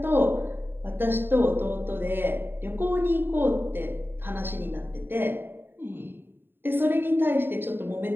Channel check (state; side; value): late; left; 0.10 ms